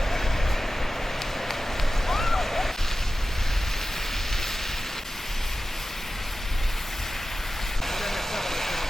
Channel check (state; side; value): normal; both; correlation 0.94